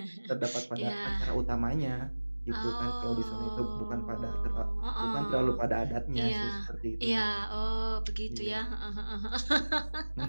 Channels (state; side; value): inverted; both; correlation -1.00